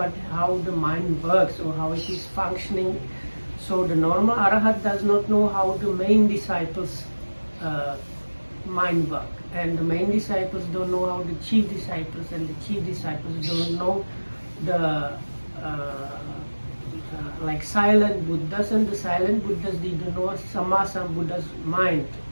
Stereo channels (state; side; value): inverted; both; correlation -1.00